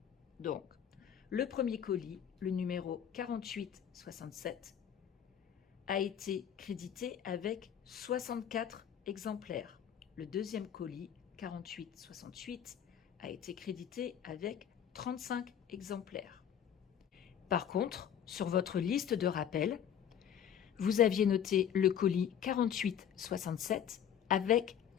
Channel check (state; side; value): quieter; right; 9.1 dB